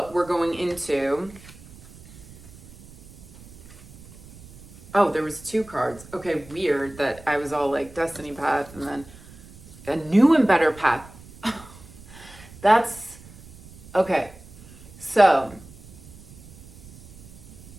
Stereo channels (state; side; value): noise; right; rumble, 20 dB below the sound